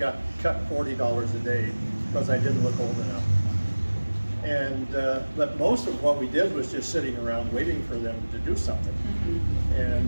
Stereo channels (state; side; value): inverted; both; correlation -1.00